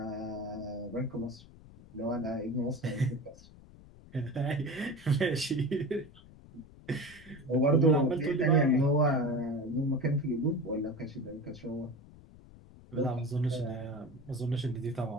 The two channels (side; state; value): left; noise; rumble, 21 dB below the sound